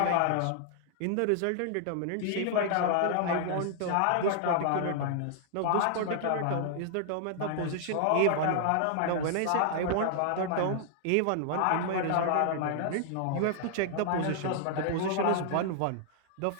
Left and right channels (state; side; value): different; both; correlation -0.01